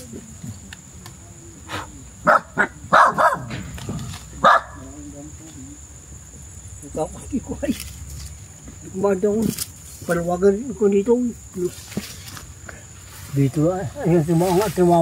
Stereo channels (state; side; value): identical; both; correlation 1.00